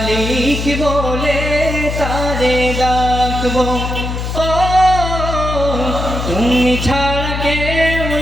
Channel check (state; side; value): noise; left; hum, 4 dB below the sound